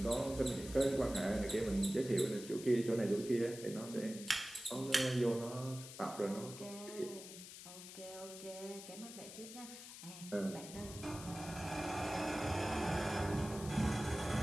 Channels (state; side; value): noise; left; hiss, 13 dB below the sound